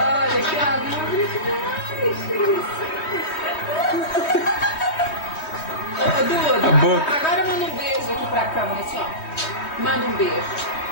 que amor demais. Ô, Duda, A boca. agora manda um beijo aqui pra câmera, assim, ó. Manda um beijo.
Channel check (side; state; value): right; late; 3.2 ms